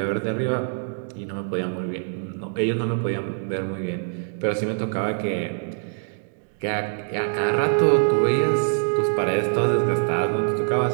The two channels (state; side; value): silent; left; digital silence